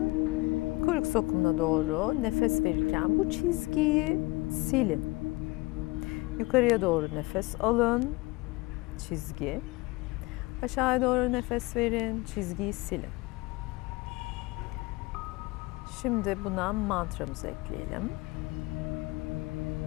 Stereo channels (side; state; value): right; quieter; 23.2 dB